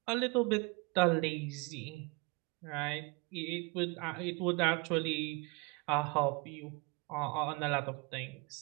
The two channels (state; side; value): quieter; left; 29.0 dB